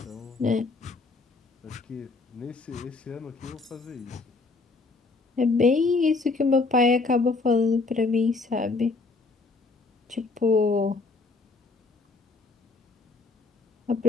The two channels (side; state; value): right; quieter; 3.8 dB